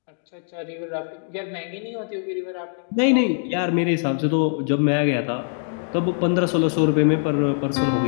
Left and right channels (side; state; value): right; silent; digital silence